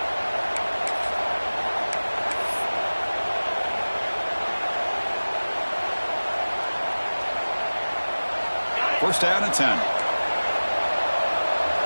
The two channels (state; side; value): inverted; both; correlation -1.00